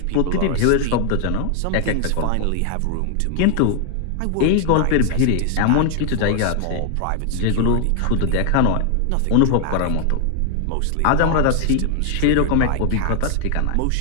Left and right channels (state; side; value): different; both; correlation 0.00